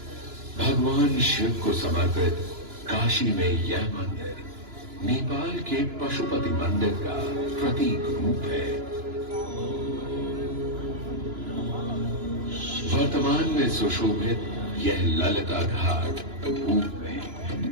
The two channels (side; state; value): left; late; 2.9 ms